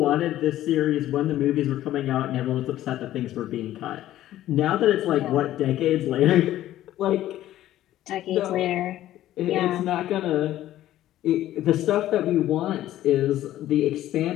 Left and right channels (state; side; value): quieter; right; 13.6 dB